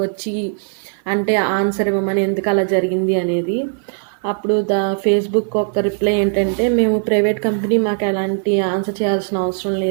వచ్చి అంటే ఆన్సర్ ఇవ్వమని, ఎందుకు అలా జరిగింది అనేది. అప్పుడు ఫేస్బుక్ ఒక రిప్లై ఏంటంటే, మేము ప్రైవేట్ కంపెనీ, మాకు ఎలాంటి ఆన్సర్ చేయాల్సిన అవసరం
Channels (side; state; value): left; silent; 60 dB below the other